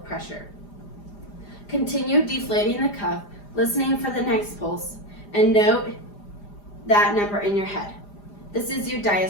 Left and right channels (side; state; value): right; late; 4.9 ms